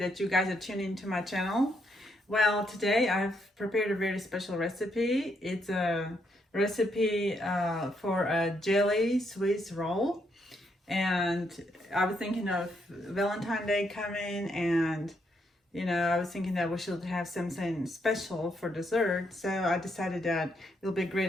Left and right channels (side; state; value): both; normal; correlation 0.76